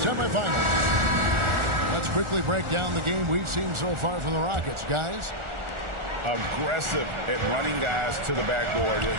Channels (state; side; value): late; left; 1.4 ms